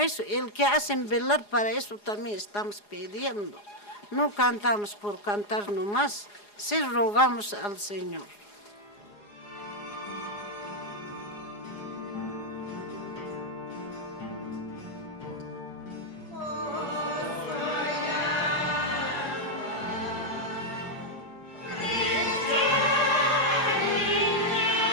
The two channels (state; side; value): late; right; 4.8 ms